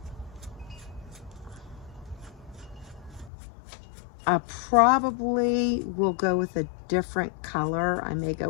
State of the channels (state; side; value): drops out; right; at 3.3 s